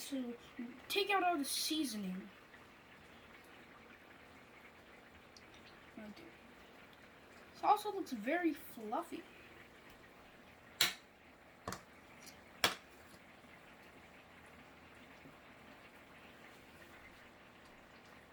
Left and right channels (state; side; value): identical; both; correlation 1.00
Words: to take out all the seasoning. It also looks very fluffy.